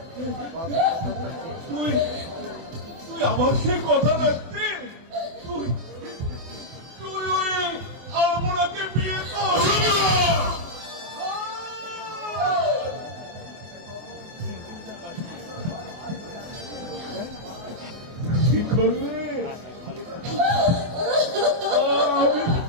তুই আমার সেই কথা রাখতে তুই ওই আলপনাকে বিয়ে করবি না।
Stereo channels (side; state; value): left; late; 24 ms